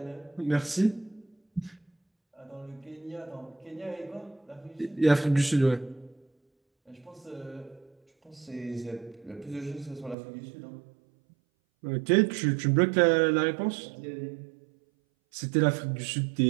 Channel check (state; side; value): drops out; left; at 10.2 s